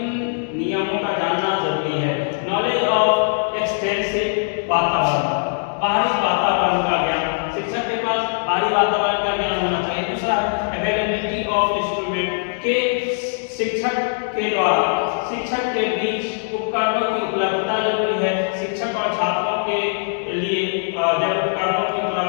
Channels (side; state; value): right; silent; digital silence